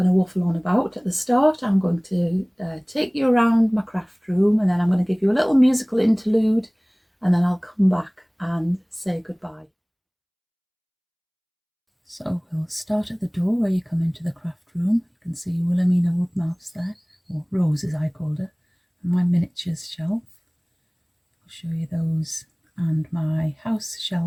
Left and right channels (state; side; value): identical; both; correlation 1.00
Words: to waffle on about at the start. I'm going to take you around my craft room, and then I'm going to give you a little musical interlude, and then I'll come back and say goodbye. So we'll start at the door where you come into the craft room. You can see Wilhelmina wood mouse there, or Rose as I called her, and my miniatures shelf. I'll show you those, and my house